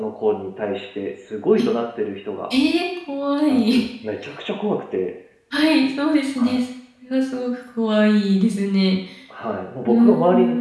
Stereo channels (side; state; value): both; identical; correlation 1.00